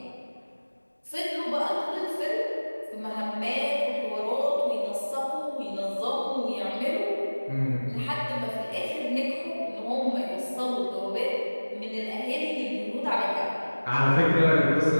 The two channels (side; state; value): both; inverted; correlation -1.00